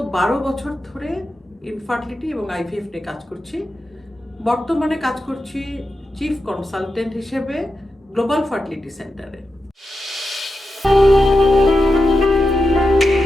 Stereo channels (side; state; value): both; normal; correlation 0.89